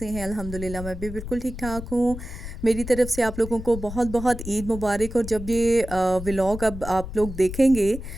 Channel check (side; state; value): left; noise; rumble, 10 dB below the sound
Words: हैं। अल्हम्दुलिल्लाह मैं भी बिल्कुल ठीक ठाक हूँ। मेरी तरफ से आप लोगों को बहुत बहुत ईद मुबारक। और जब ये व्लॉग अब आप लोग देखेंगे